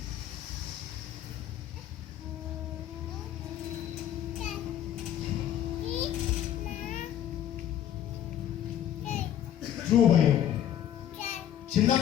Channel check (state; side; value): quieter; right; 10.7 dB